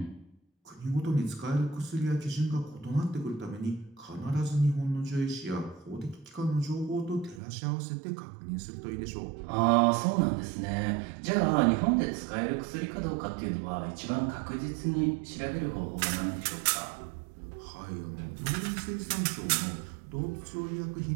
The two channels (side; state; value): left; drops out; at 7.4 s